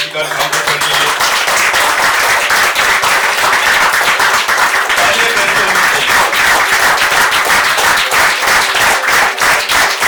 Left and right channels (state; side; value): identical; both; correlation 1.00